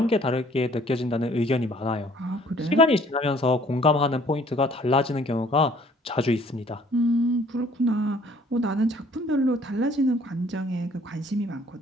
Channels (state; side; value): normal; both; correlation 0.58